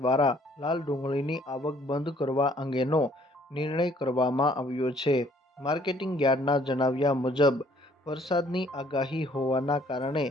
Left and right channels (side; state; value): both; normal; correlation 0.61